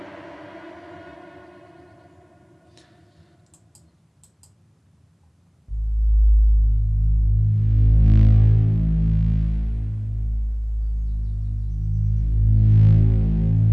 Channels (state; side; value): identical; both; correlation 1.00